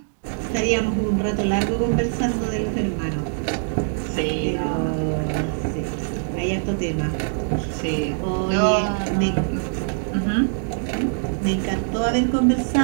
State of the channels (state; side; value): silent; left; digital silence